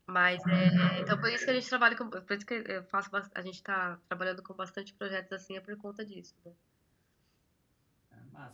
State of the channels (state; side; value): identical; both; correlation 1.00